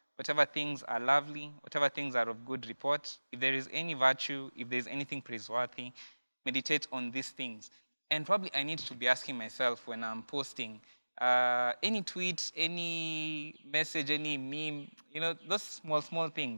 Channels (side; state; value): both; inverted; correlation -1.00